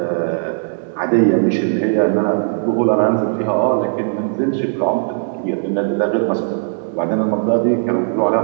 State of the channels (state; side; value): silent; left; digital silence